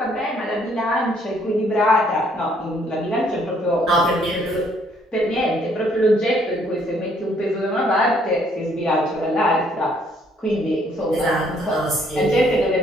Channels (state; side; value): normal; both; correlation 0.66